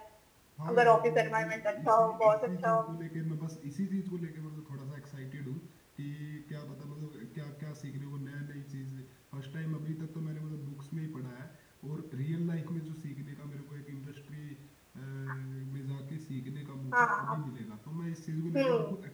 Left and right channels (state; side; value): identical; both; correlation 1.00